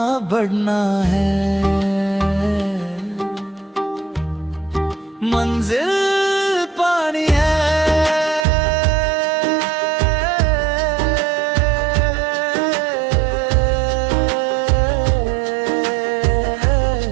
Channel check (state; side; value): drops out; left; at 8.5 s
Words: बढ़ना है, मंजिल पानी है।